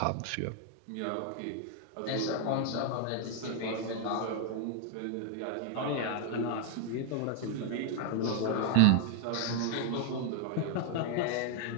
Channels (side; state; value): both; different; correlation 0.00